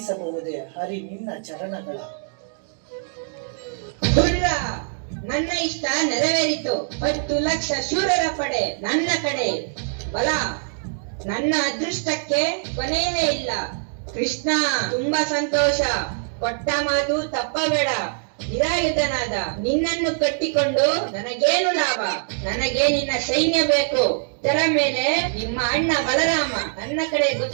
ಹರಿ ನಿನ್ನ ಚರಣಗಳ. ದುರ್ಗ, ನನ್ನ ಇಷ್ಟ ನೆರವೇರಿತು. 10 ಲಕ್ಷ ಶೂರರ ಪಡೆ ನನ್ನ ಕಡೆ. ಬಲ, ನನ್ನ ಅದೃಷ್ಟಕ್ಕೆ ಕೊನೆಯೇ ಇಲ್ಲ. ಕೃಷ್ಣ, ತುಂಬಾ ಸಂತೋಷ. ಕೊಟ್ಟ ಮಾತು ತಪ್ಪಬೇಡ. ನಿರಾಯುಧನಾದ ನಿನ್ನನ್ನು ಕಟ್ಟಿಕೊಂಡು ನನಗೇನು ಲಾಭ? ನನಗೆ ನಿನ್ನ ಸೈನ್ಯ ಬೇಕು. ಇದರ ಮೇಲೆ ನಿಮ್ಮ ಅಣ್ಣ ಬಲರಾಮ ನನ್ನ ಕಡೆ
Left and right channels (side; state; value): left; silent; digital silence